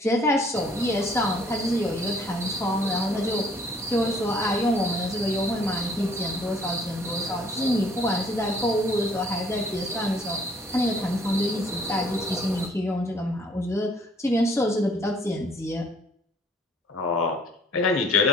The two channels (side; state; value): both; normal; correlation 0.60